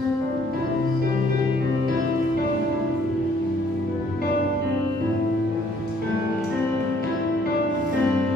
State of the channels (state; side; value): normal; both; correlation 0.63